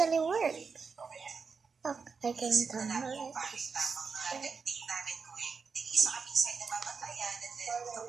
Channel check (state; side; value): quieter; left; 5.2 dB